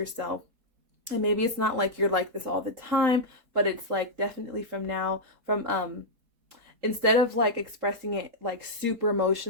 And maybe it's not like you're like this all the time, but it's like definitely from now, instead of like expressing it like super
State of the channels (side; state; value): left; late; 3.8 ms